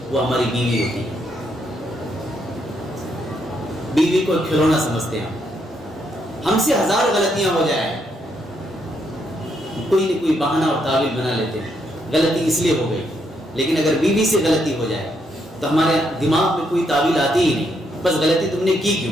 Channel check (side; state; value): both; normal; correlation 0.76